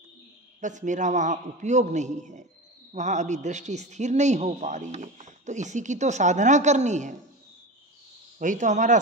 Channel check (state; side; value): normal; both; correlation 0.26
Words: बस मेरा वहां उपयोग नहीं है, वहां अभी दृष्टि स्थिर नहीं हो पा रही है। तो इसी की तो साधना करनी है, वही तो हमारा